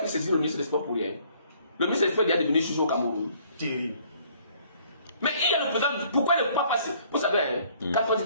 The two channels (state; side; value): inverted; both; correlation -0.60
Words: saisi le ministre des Sports pour rien? Le ministre des Sports est devenu juge au Cameroun. Mais il y a le président. Pourquoi ne pas passer? Vous savez, quand on dit